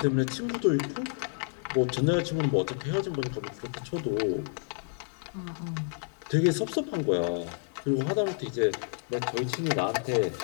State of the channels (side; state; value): right; silent; 58 dB below the other